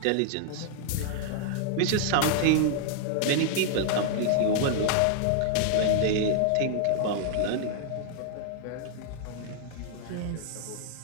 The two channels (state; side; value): different; both; correlation -0.01